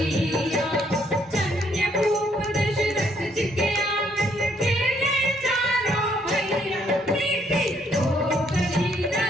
धन्य भूप दशरथ जी के आंगन के ये चारों भैया, नीति हो गई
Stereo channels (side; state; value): both; normal; correlation 0.69